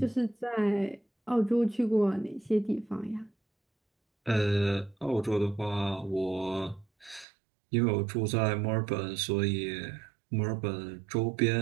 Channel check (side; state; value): left; drops out; at 7.2 s